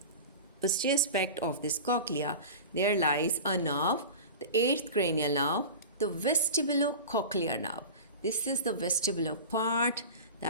posterior aspect of this cochlea, there lies a nerve, the 8th cranial nerve, the vestibulocochlear nerve. This is the vestibular part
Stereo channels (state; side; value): inverted; both; correlation -0.31